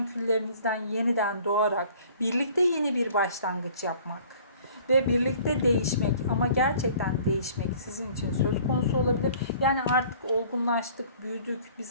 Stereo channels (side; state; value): both; inverted; correlation -0.52